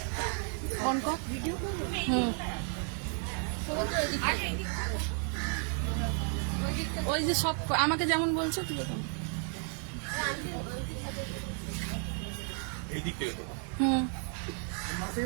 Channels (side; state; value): left; quieter; 38.9 dB